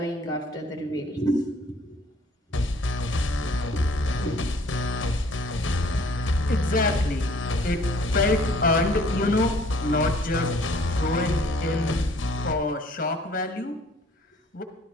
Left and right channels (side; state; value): both; normal; correlation 0.56